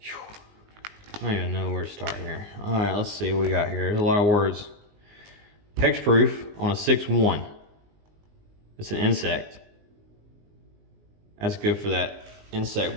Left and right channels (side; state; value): left; late; 19 ms